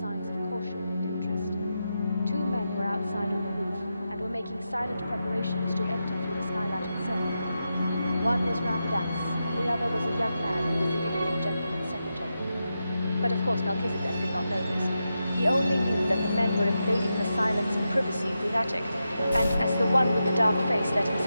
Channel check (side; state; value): both; inverted; correlation -0.88